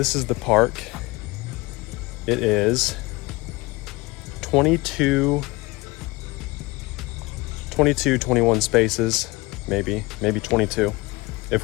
is the park. It is 21 spaces, maybe 22, if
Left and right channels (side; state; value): right; quieter; 23.1 dB